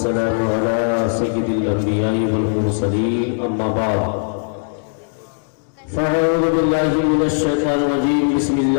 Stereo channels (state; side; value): silent; right; digital silence